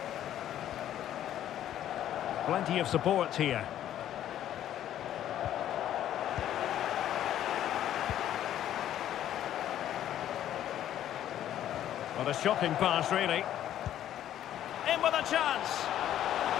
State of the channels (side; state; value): right; quieter; 11.6 dB